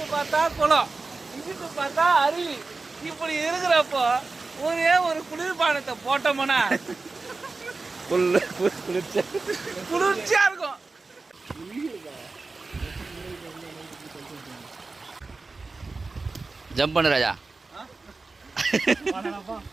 பார்த்தா குளம், இங்கிட்டு பார்த்தா அருவி. இப்படி இருக்கிறப்போ ஒரே ஒரு குளிர்பானத்தை போட்டோம்னா குளிர்ச்சியா இருக்கும். ஜம்ப் பண்ணு ராஜா.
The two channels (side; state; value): left; quieter; 3.8 dB